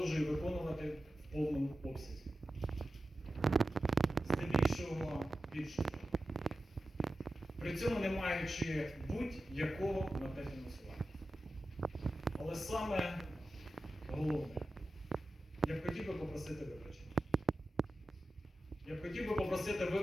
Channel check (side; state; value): both; normal; correlation 0.93